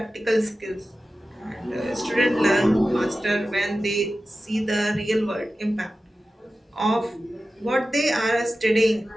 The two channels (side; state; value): both; normal; correlation 0.94